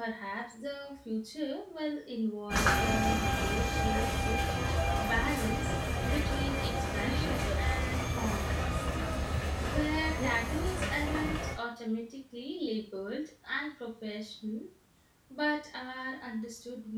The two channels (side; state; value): both; identical; correlation 1.00